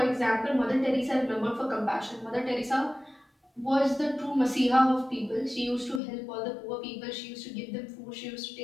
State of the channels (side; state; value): right; drops out; at 6.0 s